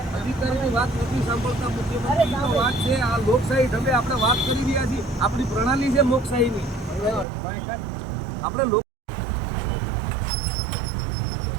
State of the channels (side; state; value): left; drops out; at 7.2 s